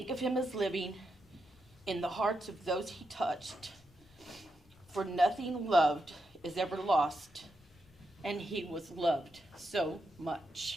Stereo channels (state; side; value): normal; both; correlation 0.84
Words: of him as living in the hearts of those he touched. For nothing loved is ever lost, and he was loved so